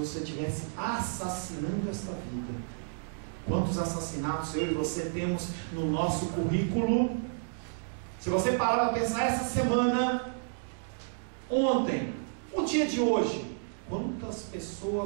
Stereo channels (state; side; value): silent; left; digital silence